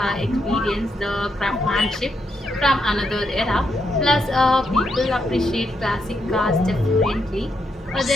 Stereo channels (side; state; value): both; normal; correlation 0.80